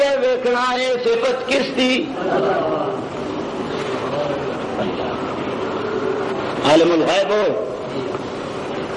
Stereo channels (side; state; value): both; identical; correlation 1.00